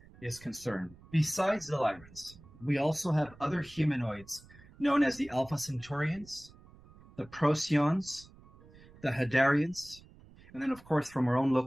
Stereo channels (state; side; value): noise; right; rumble, 23 dB below the sound